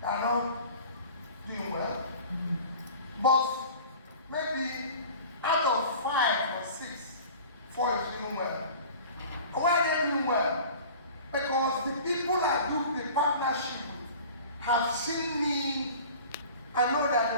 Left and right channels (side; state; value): both; inverted; correlation -0.42